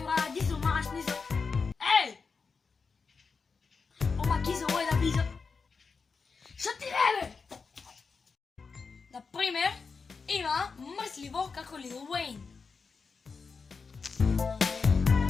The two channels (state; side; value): quieter; right; 5.0 dB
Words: Радизо Машнизо. Еј! Макизал е да бизо. Што ти бе? Например, има мрсливо како Лил Уейн.